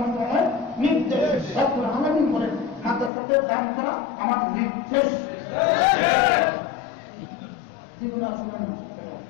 নির্দেশ। রব্বুল আলামিন বলেন মাদ্রাসাদের দান করা আমার নির্দেশ। জীবন আসলে না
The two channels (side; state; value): right; drops out; at 3.1 s